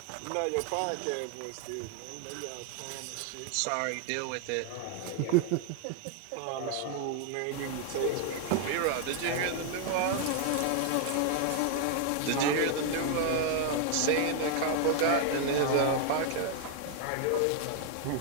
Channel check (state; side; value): different; both; correlation 0.00